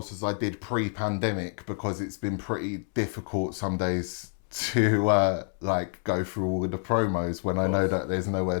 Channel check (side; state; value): right; silent; 59 dB below the other